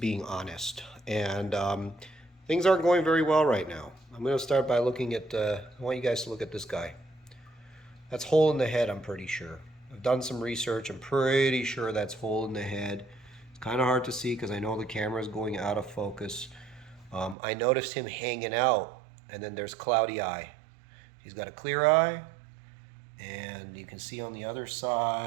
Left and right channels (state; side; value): drops out; left; at 17.4 s